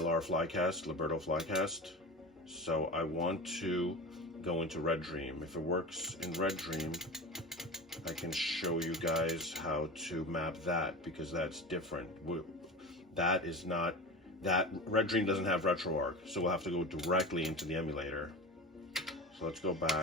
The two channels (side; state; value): both; normal; correlation 0.29